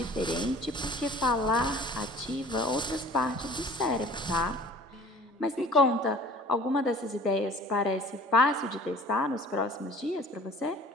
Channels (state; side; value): normal; both; correlation 0.46